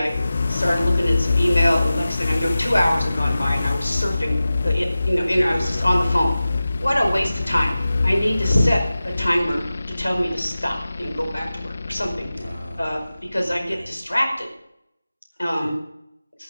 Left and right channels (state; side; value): inverted; both; correlation -0.95